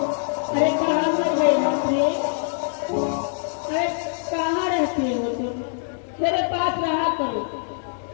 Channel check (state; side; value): silent; right; digital silence